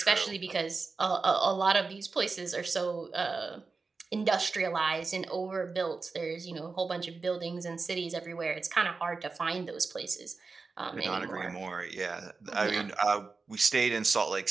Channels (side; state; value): left; quieter; 4.3 dB